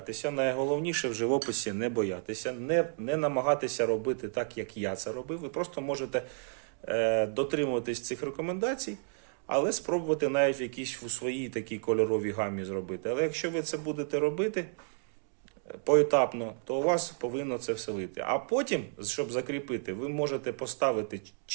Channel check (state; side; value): silent; left; 57 dB below the other